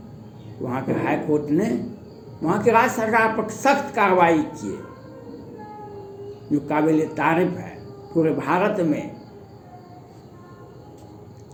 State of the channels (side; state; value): both; identical; correlation 1.00